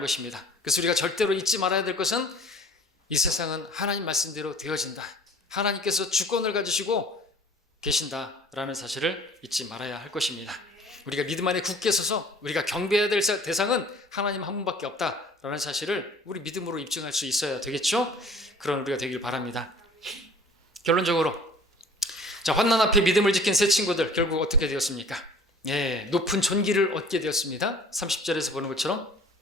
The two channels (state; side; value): normal; both; correlation 0.49